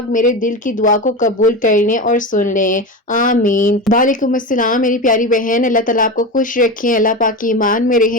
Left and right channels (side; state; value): both; normal; correlation 0.22